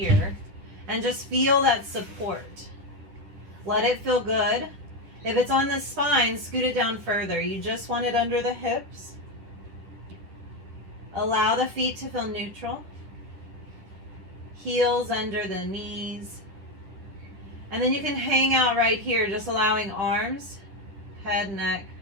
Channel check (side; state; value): left; late; 10 ms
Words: and just feel that support. Let it feel good. If it's on the spine, scoot it down further. You just want it under the hips. Allow the feet to feel neutral. Heels under the knees. And then you can hang out right here, just allowing arms, head, neck,